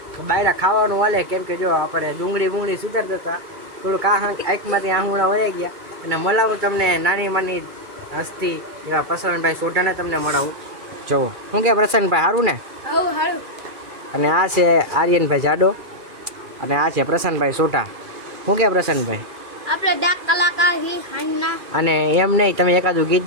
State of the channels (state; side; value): late; left; 2.4 ms